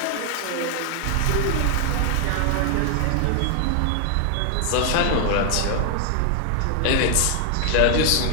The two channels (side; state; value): both; different; correlation 0.00